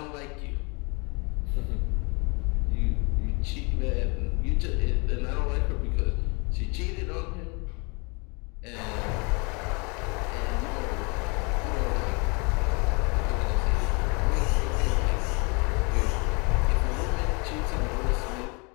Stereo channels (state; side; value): quieter; right; 31.1 dB